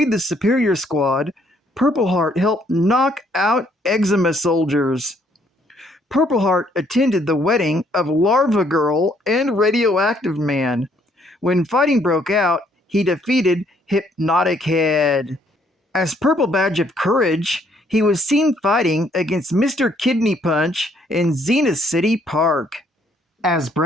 the Superior Squad, Purple Heart helped knock out Eczema soldiers. Purple Heart attended the wedding of Larva Girl and Radioactive Man. When fighting broke out, he defeated Hypnotic Head. As Purple Badge of Courage, he was seen fighting against Mr. Kidney Punch in Zenith City Park. As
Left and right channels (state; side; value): normal; both; correlation 0.67